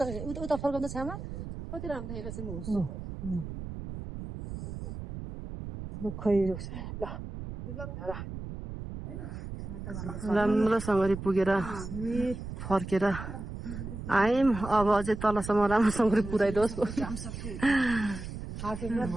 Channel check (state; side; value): noise; right; rumble, 8 dB below the sound